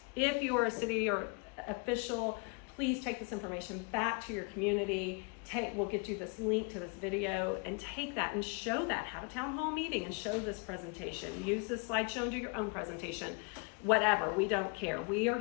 If you're a city or official, please take this information back to your community. We'll get you this link to this video and take that and show that. Have a town hall meeting and show this presentation. Use this slideshow and do your own presentation. Whatever, we don't care. We are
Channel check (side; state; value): right; quieter; 33.2 dB